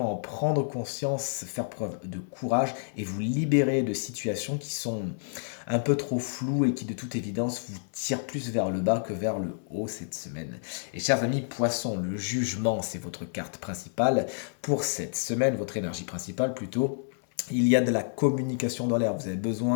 en prendre conscience, faire preuve de courage et vous libérer de situations qui sont un peu trop floues et qui de toute évidence vous tirent plus vers le bas que vers le haut cette semaine. Et chers amis poissons, le jugement c'est votre carte principale pour cette semaine, votre énergie principale plutôt. Il y a de la communication dans l'air. Vous avez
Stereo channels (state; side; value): silent; right; 58 dB below the other